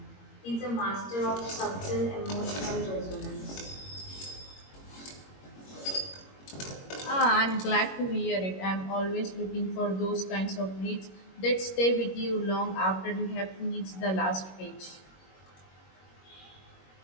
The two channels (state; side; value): late; right; 21 ms